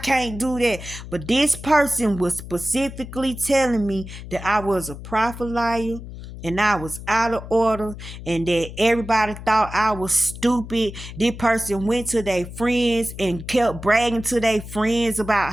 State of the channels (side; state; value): left; noise; hum, 12 dB below the sound